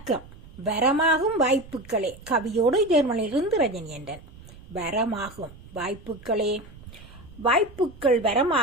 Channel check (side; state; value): right; noise; rumble, 20 dB below the sound